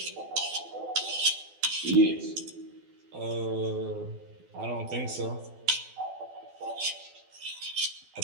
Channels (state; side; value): late; left; 12 ms